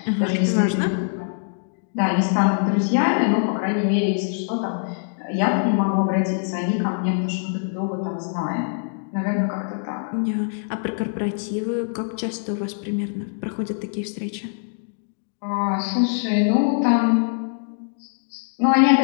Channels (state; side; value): silent; right; digital silence